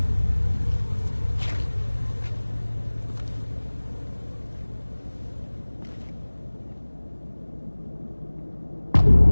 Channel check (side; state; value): both; inverted; correlation -1.00